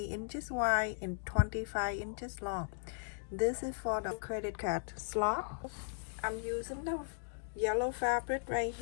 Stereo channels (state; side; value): silent; right; digital silence